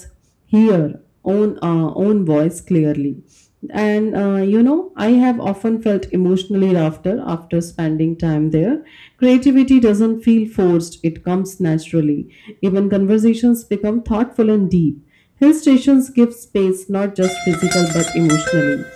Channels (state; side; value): identical; both; correlation 1.00